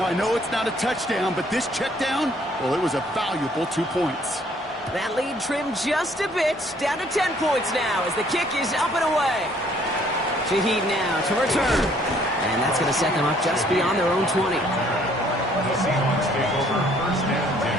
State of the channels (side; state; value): both; normal; correlation 0.62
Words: I know it's not a touchdown, but this check down, well, it was a valuable 2 points. That lead trimmed just a bit, down to 10 points now as the kick is up and away. Shaheed now to return. And that's going to set them up just beyond their own 20. The Seahawks take over 1st and 10.